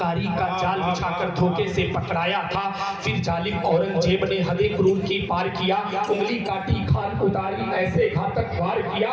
का जाल बिछाकर धोखे से पकड़ाया था। फिर जालिम औरंगजेब ने हदे क्रूर की पार किया, उंगली काटी खान उतारी ऐसे घातक वार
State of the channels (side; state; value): both; identical; correlation 1.00